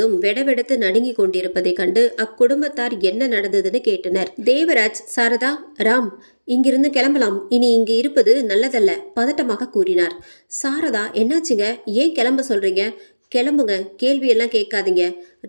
வெடவெடத்து நடுங்கி கொண்டிருப்பதை கண்டு அக்குடும்பத்தார் என்ன நடந்ததுன்னு கேட்டனர். தேவராஜ், சாரதா, ராம், இங்கிருந்து கிளம்பலாம். இனி இங்கு இருப்பது நல்லதல்ல, பதட்டமாக கூறினார். சாரதா, என்னாச்சுங்க? ஏன் கிளம்ப சொல்றீங்க? கிளம்புங்க, கேள்வியெல்லாம் கேட்காதீங்க.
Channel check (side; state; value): both; inverted; correlation -1.00